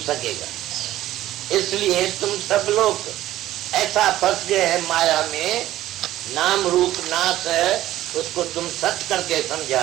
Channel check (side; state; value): left; quieter; 14.2 dB